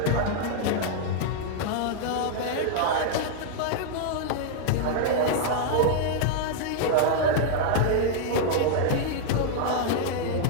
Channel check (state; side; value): different; both; correlation -0.01